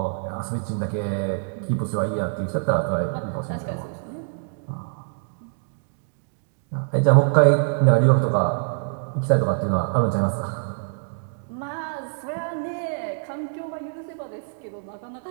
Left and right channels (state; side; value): silent; left; digital silence